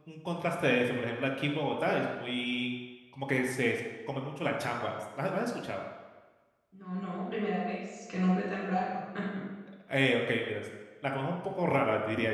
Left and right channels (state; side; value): identical; both; correlation 1.00